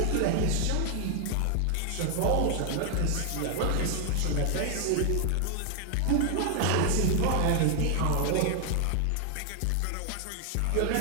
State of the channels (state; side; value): different; both; correlation 0.00